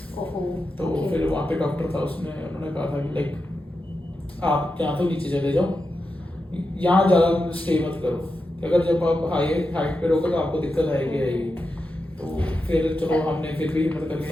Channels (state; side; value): normal; both; correlation 0.89